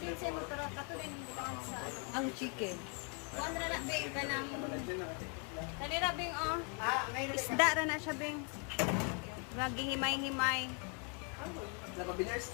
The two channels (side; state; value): right; quieter; 37.5 dB